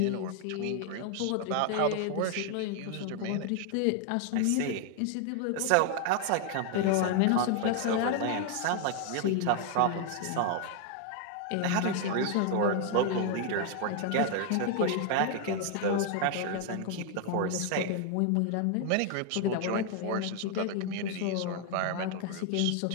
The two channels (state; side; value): different; both; correlation 0.00